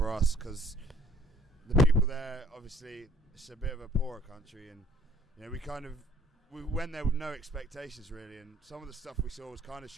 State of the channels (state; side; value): normal; both; correlation 0.59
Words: us, because the people there, obviously, it's a bit of a poorer country, and we went there with no expectations really, and some of the stuff we saw was kind of